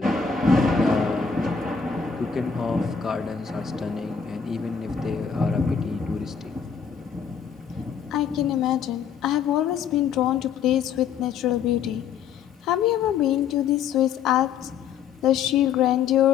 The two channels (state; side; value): quieter; right; 7.0 dB